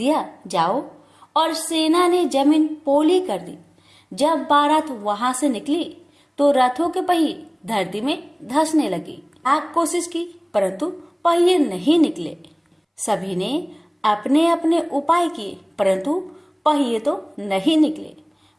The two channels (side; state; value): both; identical; correlation 1.00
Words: जाओ, और सेना ने जमीन पोली कर दी। जब बारात वहां से निकली तो रथों के पहिए धरती में धंसने लगी। लाख कोशिश की परंतु पहिए नहीं निकले। सभी ने अपने अपने उपाय किए परंतु पहिए तो नहीं निकले,